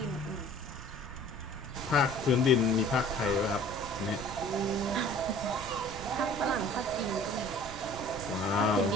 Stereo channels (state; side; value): noise; right; rumble, 13 dB below the sound